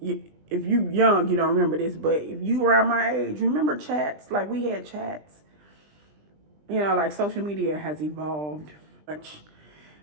if you young, you don't remember this, but if you around my age, remember chats? Like we had chats. You know, like social media has evolved much.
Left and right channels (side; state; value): left; late; 20 ms